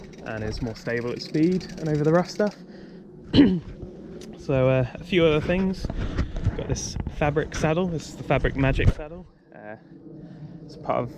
and is more stable at speed and over the rough stuff. So a few other things. Got this fabric saddle. This is the Fabric Magic saddle. It's part of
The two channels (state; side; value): identical; both; correlation 1.00